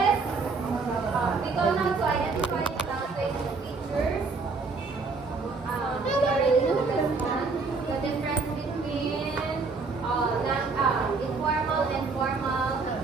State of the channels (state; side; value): quieter; left; 4.2 dB